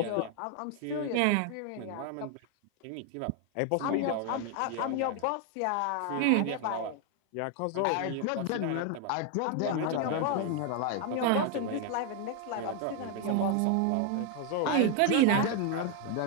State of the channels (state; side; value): different; both; correlation 0.01